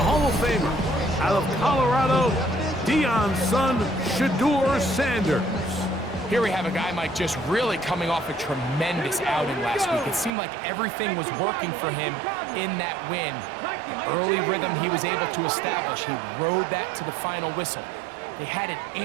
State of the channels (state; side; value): drops out; left; at 10.3 s